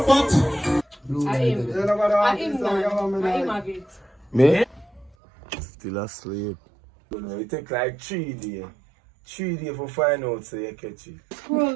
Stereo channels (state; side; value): drops out; left; at 5.2 s